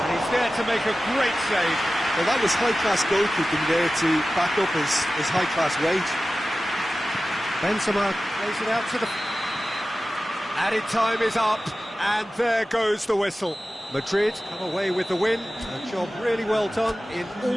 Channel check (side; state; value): both; normal; correlation 0.95